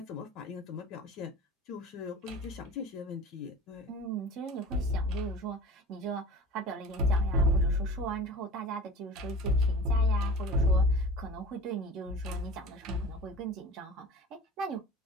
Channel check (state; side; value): normal; both; correlation 0.39